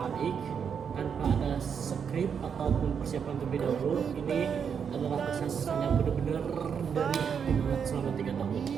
Ik, tanpa ada skrip ataupun persiapan terlebih dahulu. Ini adalah kesan-kesannya benar-benar dari hati banget selama 3 tahun.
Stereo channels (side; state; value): left; quieter; 7.1 dB